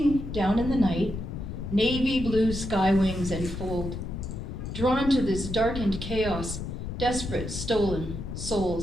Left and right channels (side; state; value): left; noise; rumble, 7 dB below the sound